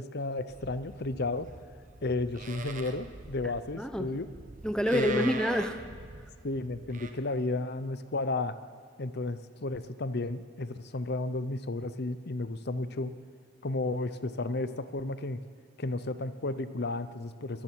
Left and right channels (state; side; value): normal; both; correlation 0.45